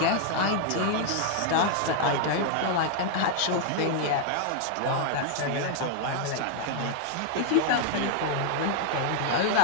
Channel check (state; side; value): different; both; correlation 0.00